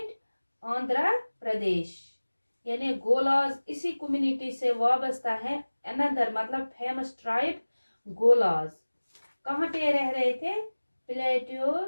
Andhra Pradesh। यानी गोलाज इसी कम्युनिटी से वाबस्ता है। अनदर मतलब फेमस ट्राइब गोलाज कहाँ पे रह रहे थे, plateau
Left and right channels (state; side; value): inverted; both; correlation -1.00